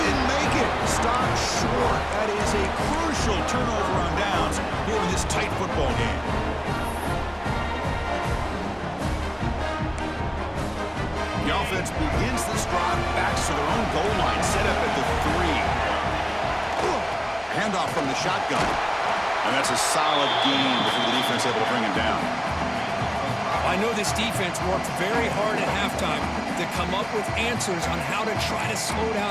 didn't make it. Stopped short. That is a crucial turnover on downs here in this tight football game. The offense begins this drive, backs to their own goal line, set up at the 3. Handoff from the shotgun. And that's a solid gain before the defense able to bring him down. I know this defense worked very hard at halftime to come up with answers on how to try to slow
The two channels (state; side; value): identical; both; correlation 1.00